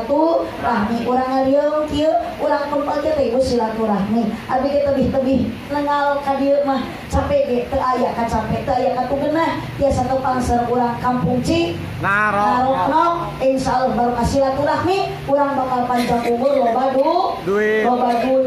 Urang ngaliung kieu urang kumpul teh ieu silaturahmi. Abdi ge tebih-tebih nengal ka dieu mah capek ge teu aya ka capek teu aya ka tugeunah tiasa tepang sareng urang kampung Ci Narokno. Insyaallah barokah silaturahmi urang bakal panjang umur loba duit loba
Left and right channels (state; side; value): identical; both; correlation 1.00